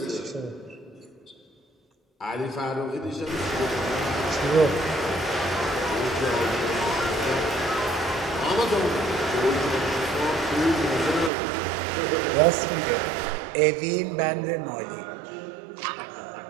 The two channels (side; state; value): left; drops out; at 11.3 s